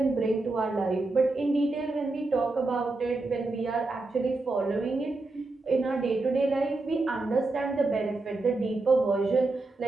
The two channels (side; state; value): left; quieter; 3.2 dB